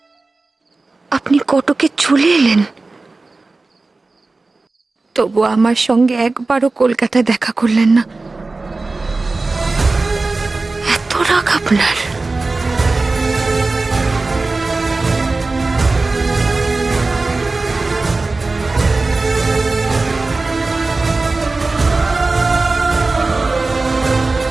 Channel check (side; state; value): left; quieter; 3.5 dB